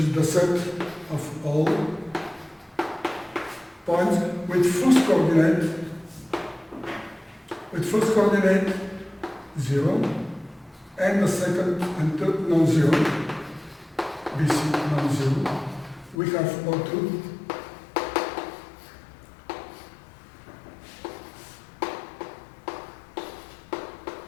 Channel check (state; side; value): drops out; right; at 16.2 s